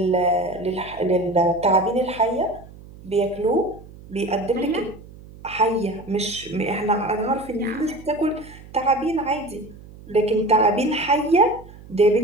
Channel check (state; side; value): noise; right; hum, 19 dB below the sound